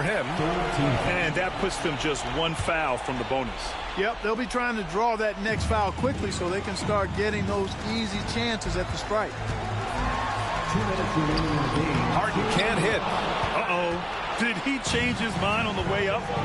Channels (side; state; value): both; identical; correlation 1.00